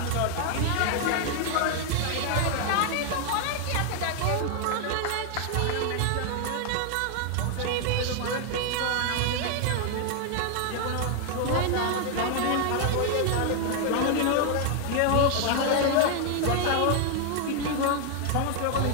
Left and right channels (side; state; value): both; different; correlation 0.00